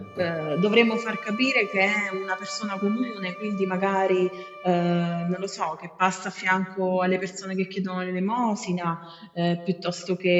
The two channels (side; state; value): both; identical; correlation 1.00